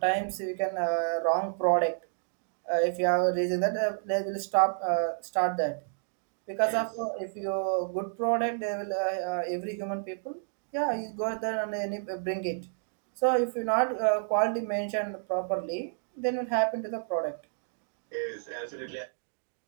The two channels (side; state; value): left; silent; digital silence